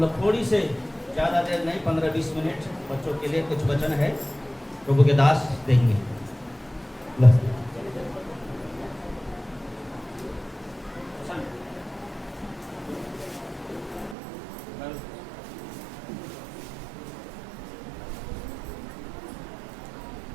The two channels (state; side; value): drops out; left; at 14.2 s